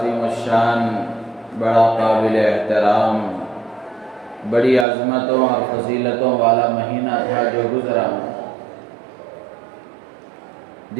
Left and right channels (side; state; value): left; drops out; at 4.9 s